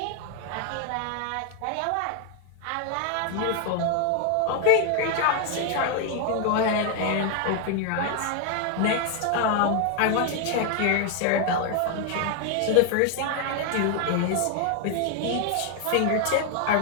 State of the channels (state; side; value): different; both; correlation 0.01